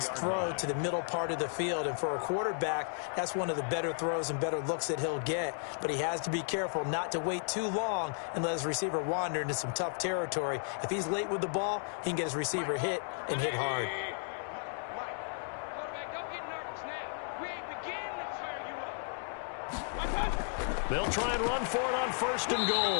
throw to the middle part of the field. And for a quarterback, that's one of the better throws and better looks that he'll get. But he has to be careful not to wait too long and let his receiver wander into some tough territory. If he's late with the ball, he can get his receiver hit and hit hard. Mike, quarterback, don't get nervous now. We ain't beginning to tear you up. They'll try and run for it on 1st and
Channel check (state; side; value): silent; right; 55 dB below the other